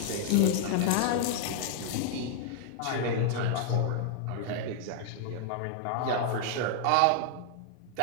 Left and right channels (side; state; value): both; different; correlation -0.01